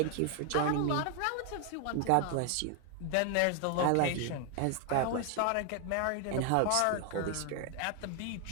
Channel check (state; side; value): different; both; correlation 0.01